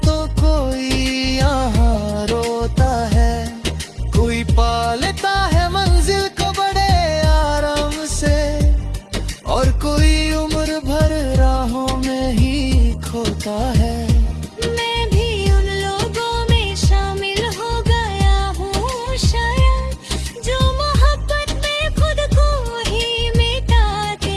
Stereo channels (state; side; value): identical; both; correlation 1.00